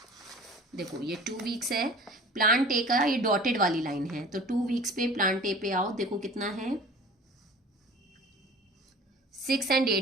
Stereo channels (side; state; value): both; normal; correlation 0.43